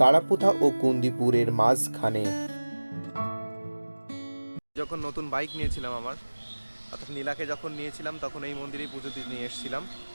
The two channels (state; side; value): inverted; both; correlation -1.00